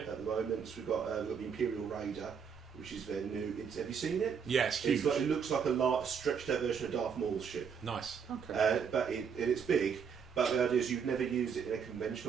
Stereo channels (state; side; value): quieter; left; 6.7 dB